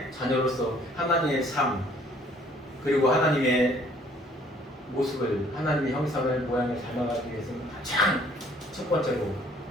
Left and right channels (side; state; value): both; normal; correlation 0.59